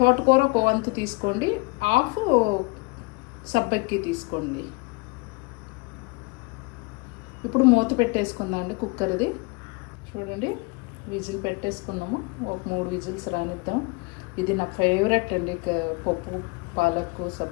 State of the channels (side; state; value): right; quieter; 26.9 dB